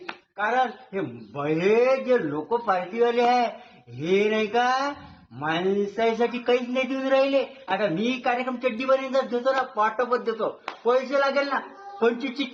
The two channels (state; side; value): identical; both; correlation 1.00